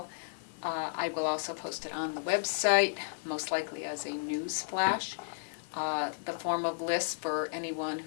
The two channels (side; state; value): right; silent; digital silence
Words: I will also post it on the website, most likely as a news flash. The form of list for anyone